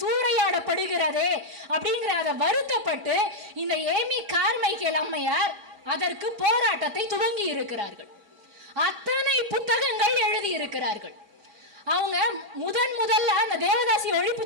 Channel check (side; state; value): left; late; 4.8 ms